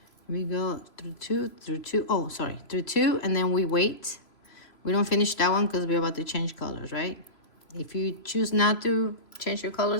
We go through 2, through 2, oh, sorry, through 2, and then we wait. We don't finish that one because we're about to change colors, right? If you choose not to change your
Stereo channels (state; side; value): late; right; 3.0 ms